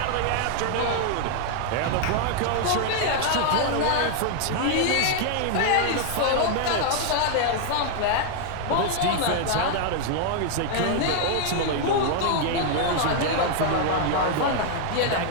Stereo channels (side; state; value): both; different; correlation 0.00